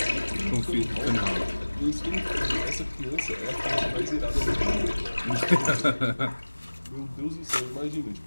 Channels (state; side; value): inverted; both; correlation -1.00